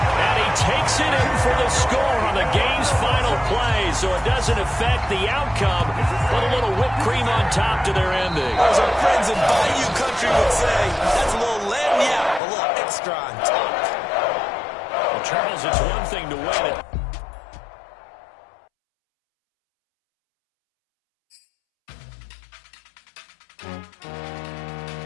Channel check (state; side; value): drops out; right; at 12.4 s